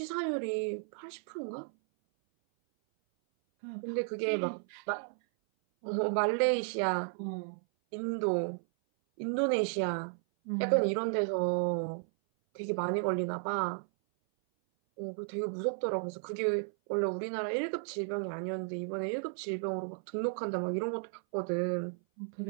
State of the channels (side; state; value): left; silent; 55 dB below the other